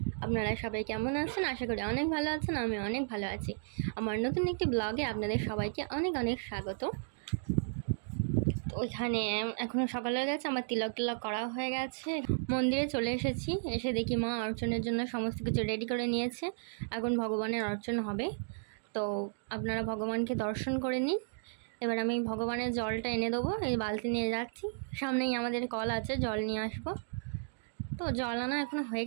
আপনারা সবাই কেমন আছেন? আশা করি অনেক ভালো আছেন। আমি অনেক ভালো আছি। আমার নতুন একটি ব্লগে আপনাদের সবাইকে অনেক অনেক স্বাগত। তো ওইখানে এখনও সকাল হয়ে গেছে, আমার তিলক করা হয়ে গেছে। মন্দিরে চলে এসেছি, এসে দেখি মা অর্চনের জন্য সমস্ত কিছু রেডি করে নিয়েছে। এখন ভগবানের অর্চন হবে, তো আপনারা ভগবানকে দর্শন করে নিন। এবার আমি ভগবানের জলটা এনে দেবো, এই বালতি নিয়ে যাচ্ছি। সামনেই আমাদের কল আছে, জল নিয়ে আসবো। তো জল আনা এখনো হয়ে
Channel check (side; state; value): left; silent; digital silence